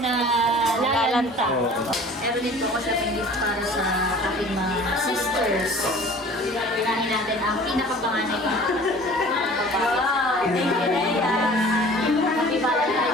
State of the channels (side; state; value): both; normal; correlation 0.46